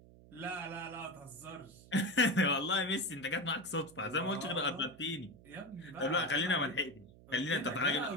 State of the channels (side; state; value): right; noise; hum, 22 dB below the sound